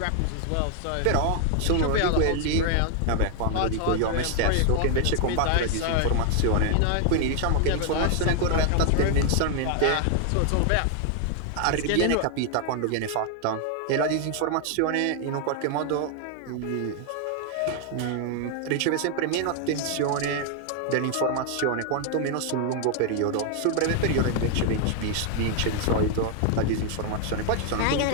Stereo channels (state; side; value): different; both; correlation 0.00